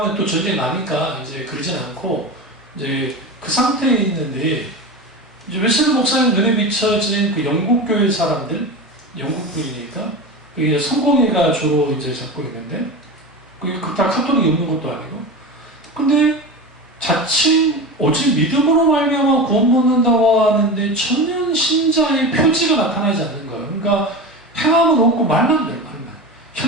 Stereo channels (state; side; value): normal; both; correlation 0.26